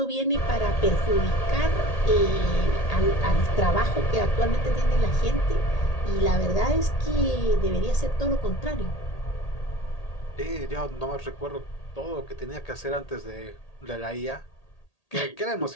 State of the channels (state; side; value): late; right; 1.8 ms